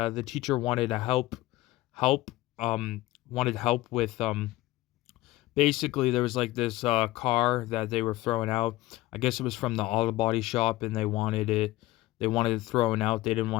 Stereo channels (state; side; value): quieter; right; 17.6 dB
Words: the teacher wanted to help wanted help with basically there was like this car that they were throwing out. I guess it was from the auto body shop and they wanted it thrown out. They didn't